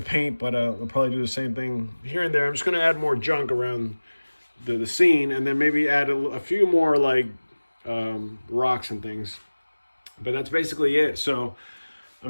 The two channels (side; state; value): both; inverted; correlation -1.00